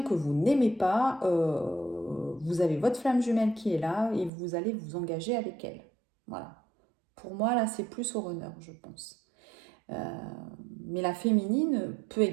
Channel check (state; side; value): drops out; left; at 4.3 s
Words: que vous n'aimez pas, vous avez votre flamme jumelle qui est là et vous allez vous engager avec elle. Voilà. Pour moi, là, c'est plus au runner, je pense. Mais la féminine peut